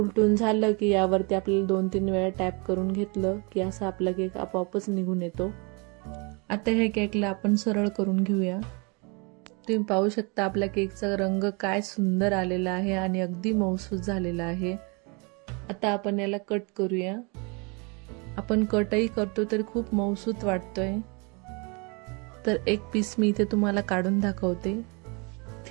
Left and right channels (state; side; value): quieter; left; 31.4 dB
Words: झालं की यावरती आपल्याला 2-3 वेळा टॅप करून घेतलं की असा आपला केक आपोआपच निघून येतो। आता हे केकला आपण सरळ करून घेऊया। तुम्ही पाहू शकता आपल्या केकचा रंग काय सुंदर आलेला आहे आणि अगदी मऊसूत झालेला आहे। आता आपण याला कट करूया। आपण कटही करतो तर खूप मऊसूत वाटतोय। तर एक पीस मी इथे तुम्हाला काढून दाखवते।